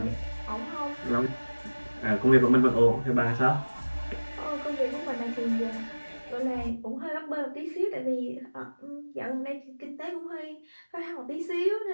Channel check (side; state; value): both; inverted; correlation -1.00